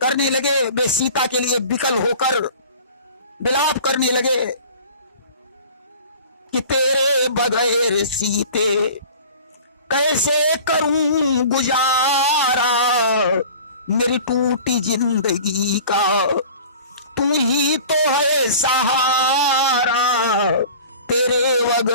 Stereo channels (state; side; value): inverted; both; correlation -0.43